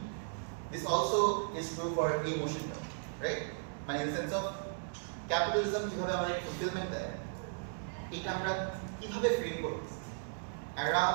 This also is true for emotion, right? মানে in the sense of capitalism কিভাবে আমাদের fulfillment দেয়, এটা আমরা কিভাবে frame করতেছি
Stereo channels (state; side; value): silent; left; digital silence